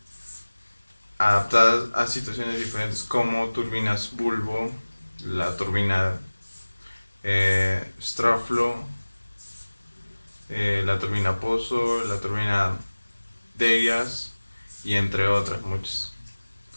adaptadas a situaciones diferentes, como turbinas bulbo, la turbina Straflo, la turbina Pozo, la turbina Derias y entre otras muchas.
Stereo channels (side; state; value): both; inverted; correlation -1.00